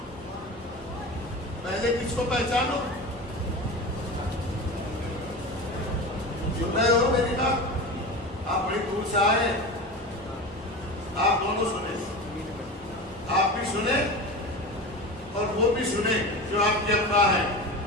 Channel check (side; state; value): both; normal; correlation 0.28